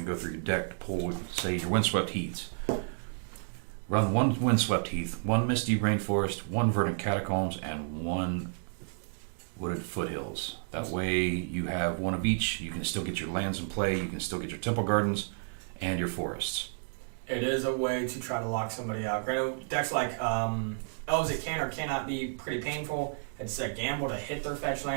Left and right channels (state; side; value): silent; left; digital silence